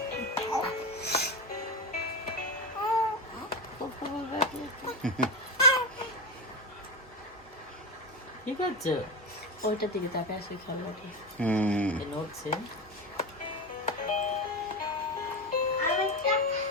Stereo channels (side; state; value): both; normal; correlation 0.18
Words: আছে, ওইটার দিকে তাকে আসে খেলাটি নড়ছে।